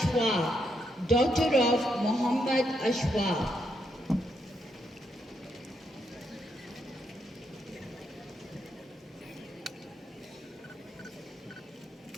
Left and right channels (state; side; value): normal; both; correlation 0.79